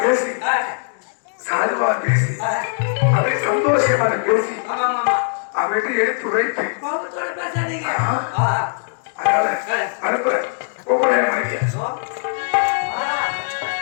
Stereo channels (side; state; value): right; silent; digital silence